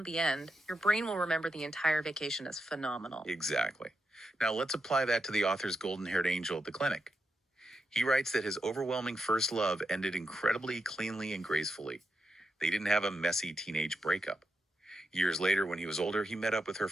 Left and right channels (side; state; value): both; normal; correlation 0.85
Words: the end, your brain will remember the entire vacation as phenomenal. Exactly. Now let's apply that to the author's golden haired angel at the clinic. He writes that his overwhelming first love ended incredibly cleanly and gracefully. They didn't have a messy teenage breakup. Years later, when he was older, he met up with her